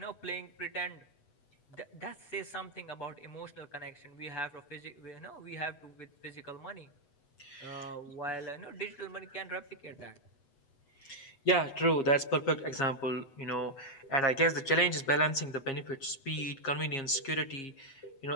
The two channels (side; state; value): right; late; 7.4 ms